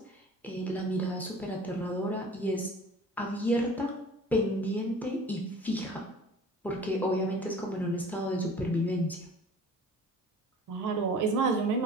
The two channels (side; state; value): both; normal; correlation 0.45